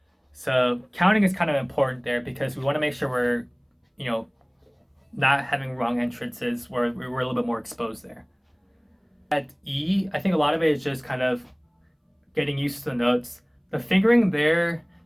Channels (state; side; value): identical; both; correlation 1.00